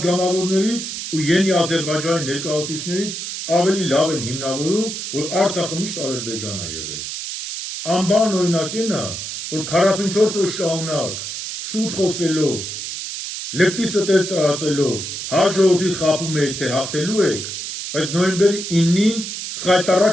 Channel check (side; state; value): right; noise; hiss, 6 dB below the sound